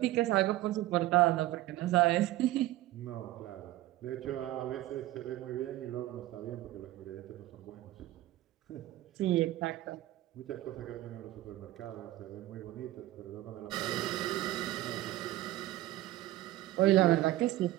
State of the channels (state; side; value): quieter; left; 15.9 dB